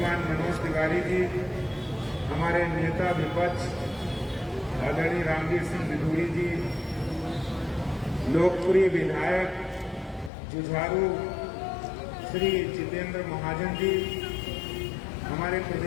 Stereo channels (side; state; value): right; drops out; at 10.3 s